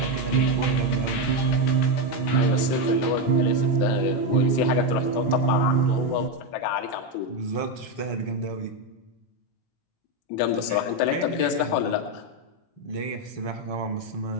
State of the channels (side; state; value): right; late; 17 ms